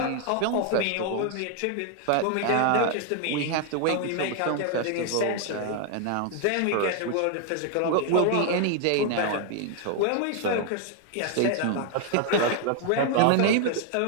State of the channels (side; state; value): both; different; correlation 0.00